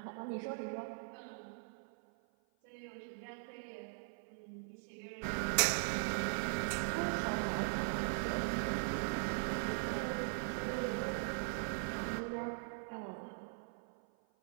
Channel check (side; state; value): left; silent; 51 dB below the other